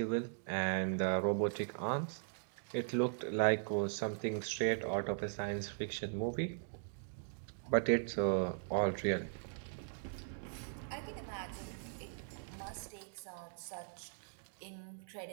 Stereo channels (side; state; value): left; silent; digital silence